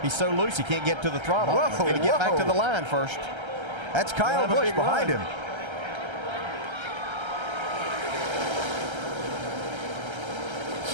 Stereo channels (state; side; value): late; left; 1.3 ms